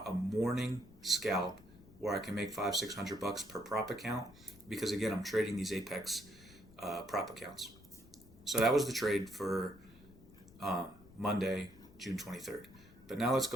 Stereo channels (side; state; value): left; noise; rumble, 22 dB below the sound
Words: a morning scalp where I can make $500-600 per prop account, because again, I'm trading these Apex prop accounts. So that was the trade for Monday, June 23rd. But now let's